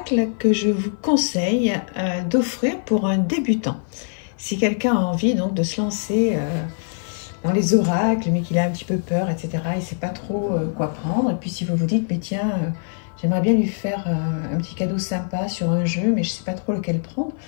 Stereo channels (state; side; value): silent; right; 55 dB below the other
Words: que je vous conseille d'offrir pour un débutant. Si quelqu'un a envie donc de se lancer dans les oracles, mais qu'il a un petit peu peur, etc., il ne sait pas trop quoi prendre. Et puis si vous vous dites, mais tiens, j'aimerais bien lui faire un petit cadeau sympa sur un jeu, mais je ne sais pas trop lequel prendre,